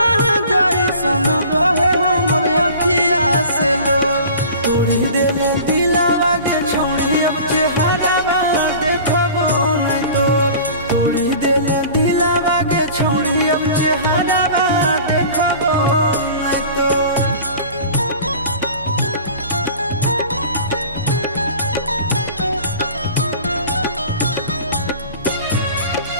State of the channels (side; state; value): both; inverted; correlation -0.42